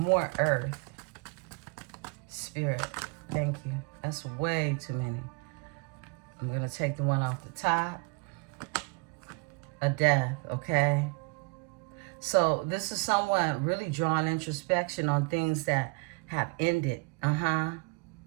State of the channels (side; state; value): left; quieter; 31.4 dB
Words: Earth. Spirit. Thank you. That's way too many. I'm going to take the one off the top. A death, okay? So this is someone really drawing introspection on things that have ended.